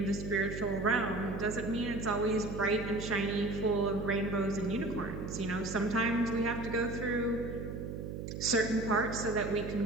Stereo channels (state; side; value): noise; right; hum, 6 dB below the sound